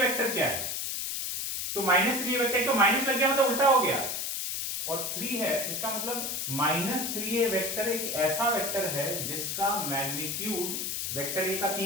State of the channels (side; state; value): left; noise; hiss, 2 dB below the sound